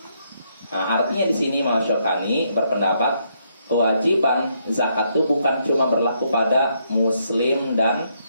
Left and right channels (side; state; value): both; inverted; correlation -0.75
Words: Nah, artinya di sini Imam Asy-Syaukani berpendapat kewajiban zakat itu bukan cuma berlaku pada muslim dan